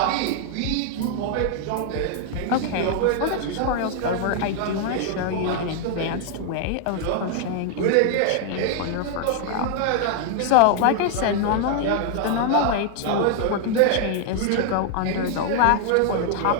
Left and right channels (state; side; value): different; both; correlation 0.00